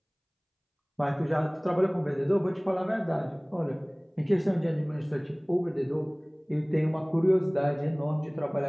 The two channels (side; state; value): both; identical; correlation 1.00